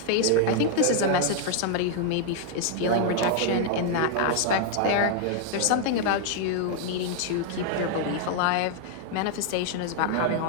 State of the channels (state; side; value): different; both; correlation 0.00